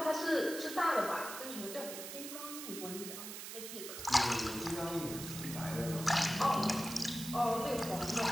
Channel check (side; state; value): right; noise; hiss, 8 dB below the sound